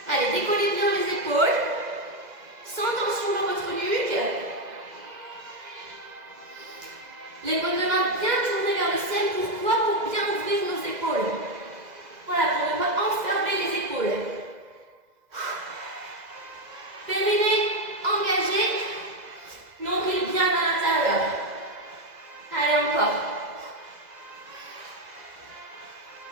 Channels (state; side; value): late; left; 2.0 ms